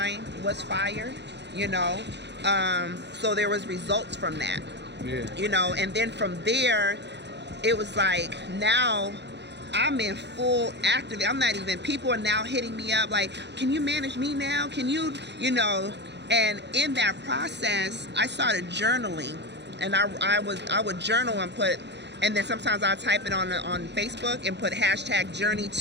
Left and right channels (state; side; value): late; left; 0.50 ms